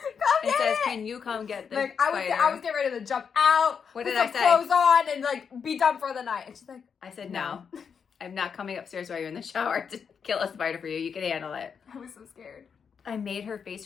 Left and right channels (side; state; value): right; quieter; 6.6 dB